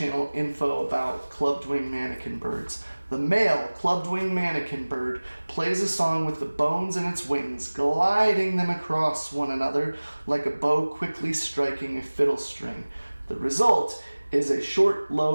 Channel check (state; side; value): inverted; both; correlation -1.00